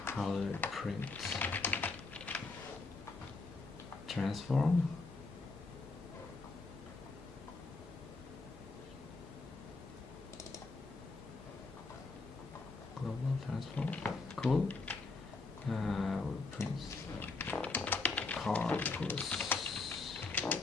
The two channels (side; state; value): right; quieter; 3.8 dB